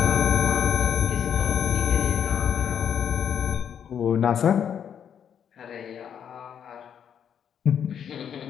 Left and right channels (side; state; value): right; quieter; 8.4 dB